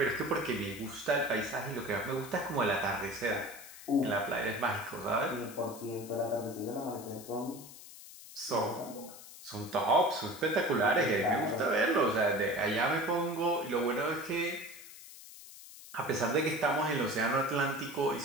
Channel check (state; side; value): noise; left; hiss, 16 dB below the sound